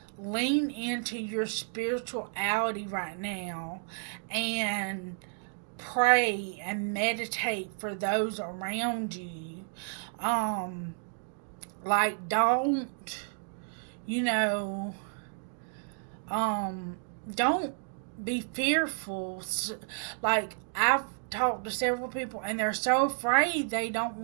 lean into your spirituality right now and pray and meditate for those around you. Like don't don't be fearful. Like I've talked to several people and they're so afraid they don't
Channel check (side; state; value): left; silent; 57 dB below the other